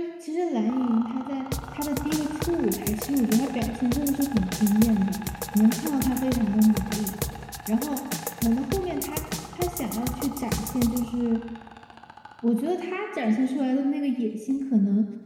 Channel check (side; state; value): both; identical; correlation 1.00